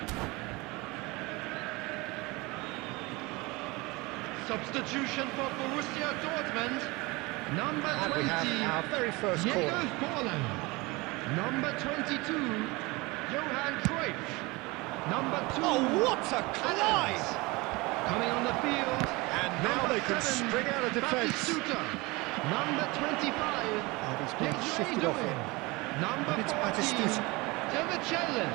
Substitution for Borussia Dortmund. Number 20, And we have our very first Diego corner. Forlan. Number 22, Johan Cruyff. Number 2, Oh, what a collide! Adams. Coming on the field. And now number they can 7, spring out of defence. Batistuta. Number 25, And he's been shifted off Doing. him. Number And it's 14, Batistuta.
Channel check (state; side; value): quieter; left; 23.9 dB